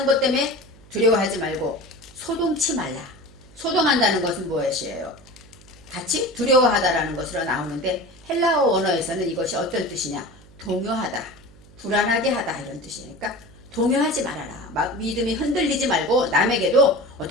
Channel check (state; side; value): noise; right; hum, 24 dB below the sound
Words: 것 때문에 두려워하지 말고 소동치 말라. 소동한다는 것은 무엇이에요? 같이 두려워하다라는 것으로 나오는데, 헬라어 원어에서는 이것이 어떤 뜻이냐? 동요하다, 불안하게 하다, 이런 뜻이니까 동요하지 말아라. 막 믿음이 흔들리지 말고 남에게도